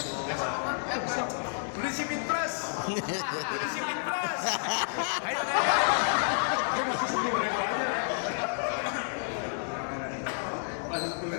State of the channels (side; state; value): right; silent; digital silence